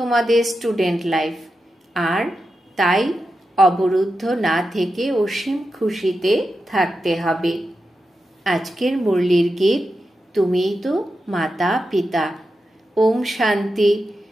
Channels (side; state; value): both; normal; correlation 0.89